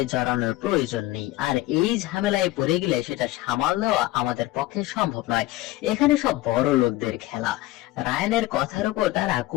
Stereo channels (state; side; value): quieter; right; 17.7 dB